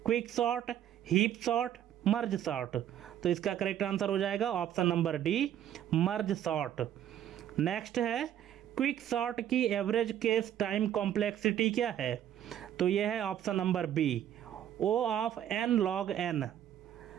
quick sort, heap sort, merge sort, तो इसका करेक्ट आंसर हो जाएगा option number D, merge sort. Next है क्विक सॉर्ट की एवरेज केस टाइम कॉम्प्लेक्सिटी क्या है, तो यह है option number B, O of n log n।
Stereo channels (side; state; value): left; quieter; 10.7 dB